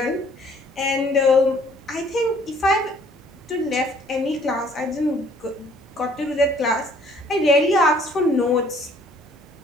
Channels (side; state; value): both; normal; correlation 0.59